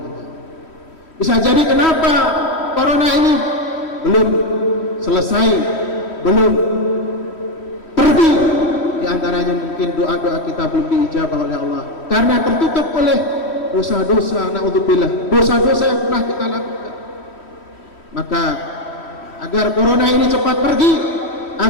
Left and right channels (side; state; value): right; late; 3.1 ms